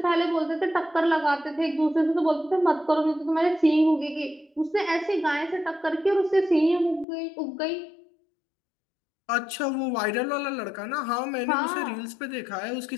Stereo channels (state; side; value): drops out; right; at 7.1 s